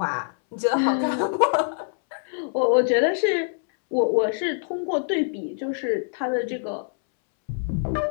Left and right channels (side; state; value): right; silent; 62 dB below the other